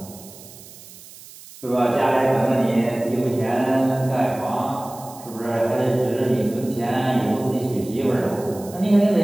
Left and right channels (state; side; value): noise; right; hiss, 19 dB below the sound